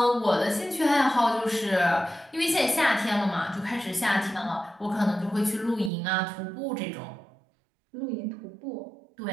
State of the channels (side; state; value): left; drops out; at 5.9 s